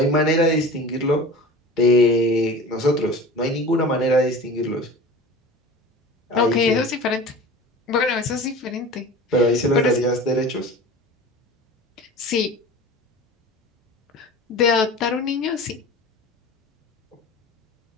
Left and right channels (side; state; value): both; normal; correlation 0.37